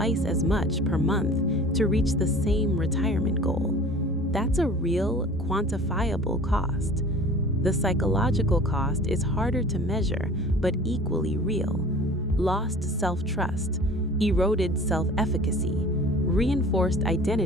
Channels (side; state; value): both; normal; correlation 0.44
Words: as much per month to reach the same retirement goal. That's a real, quantifiable cost. The psychological cost is harder to measure, but equally real. Lost self-trust, eroded self-efficacy, reinforced